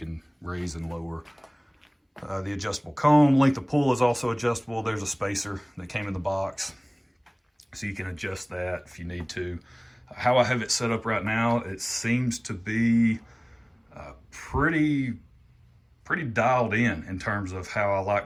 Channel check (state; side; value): identical; both; correlation 1.00